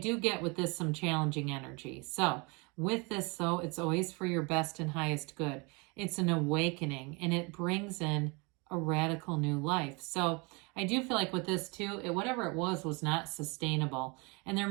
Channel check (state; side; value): quieter; left; 29.4 dB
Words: get with this some challenging energy. So with this, though, it's always for your best and highest good. It's an awakening, and it brings in a radical new life. So I do feel like with this too, whatever it was not sustainable. And there